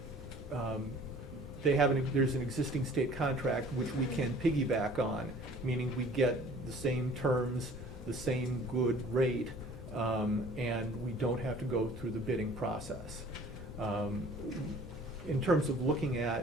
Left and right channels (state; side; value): normal; both; correlation 0.50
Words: there's an existing state contract which we can piggyback on, meaning we get the same terms, the same good rate, and we don't have to go through the bidding process. In terms of looking